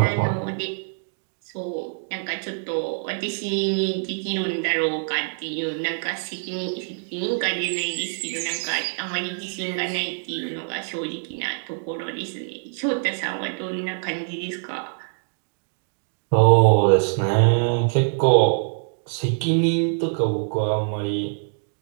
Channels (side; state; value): left; silent; digital silence